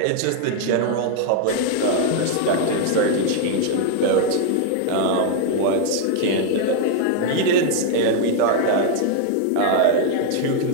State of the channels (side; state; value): both; different; correlation 0.00